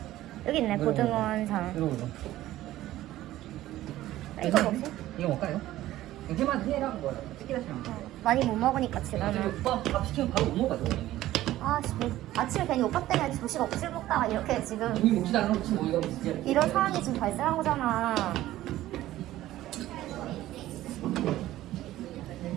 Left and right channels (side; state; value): left; quieter; 14.9 dB